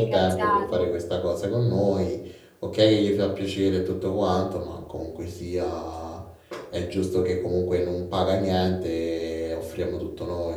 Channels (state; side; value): identical; both; correlation 1.00